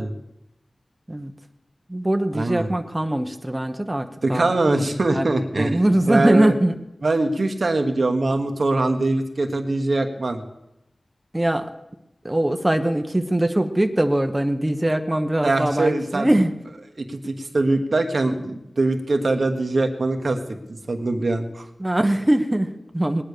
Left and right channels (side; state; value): both; normal; correlation 0.98